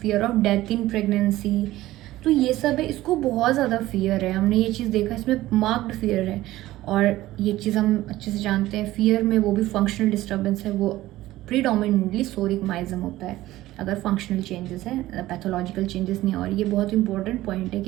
of death in pregnancy. तो ये सब है, इसको बहुत ज़्यादा fear है, हमने ये चीज़ देखा, इसमें मार्क्ड फियर है। और ये चीज़ हम अच्छे से जानते हैं, फियर में वो भी फंक्शनल डिस्टर्बेंस है, वो प्रीडोमिनेटली सोरिक माइज्म होता है अगर फंक्शनल चेंजेस है, पैथोलॉजिकल चेंजेस नहीं है। और ये बहुत इंपॉर्टेंट पॉइंट है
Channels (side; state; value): left; quieter; 16.1 dB